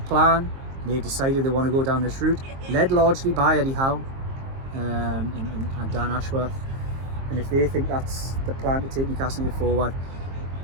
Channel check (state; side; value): late; left; 22 ms